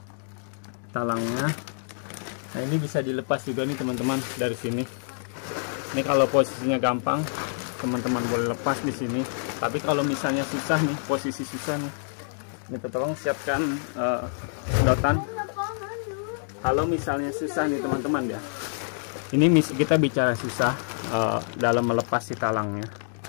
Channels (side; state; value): right; silent; digital silence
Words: talangnya. Nah ini bisa dilepas juga nih teman-teman dari sini. Ini kalau posisinya gampang teman-teman boleh lepas di sini. Tapi kalau misalnya susah nih, posisi susah nih, ini tolong siapkan sedotan. Kalau misalnya susah nih teman-teman ya, ini kita bicara susah dalam melepas si talangnya.